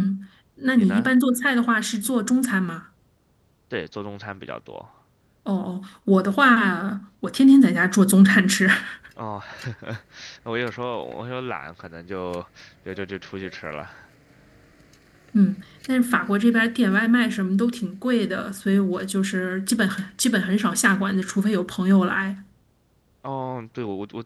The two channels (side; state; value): both; identical; correlation 1.00